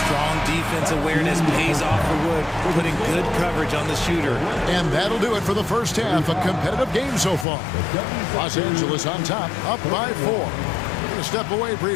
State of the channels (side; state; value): right; drops out; at 7.5 s